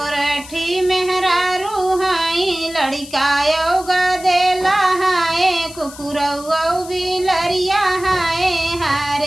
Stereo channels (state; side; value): noise; left; hiss, 16 dB below the sound